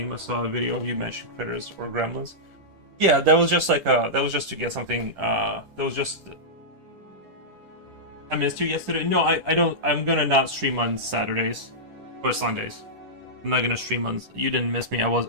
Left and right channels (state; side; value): late; left; 10 ms